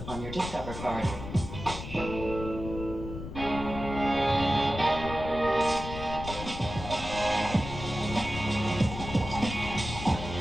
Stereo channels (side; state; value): left; noise; rumble, 8 dB below the sound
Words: on your Discover card.